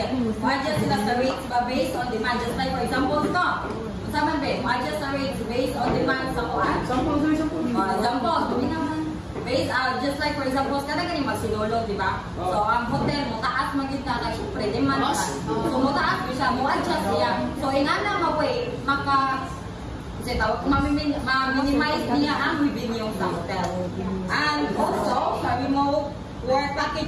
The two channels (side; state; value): both; identical; correlation 1.00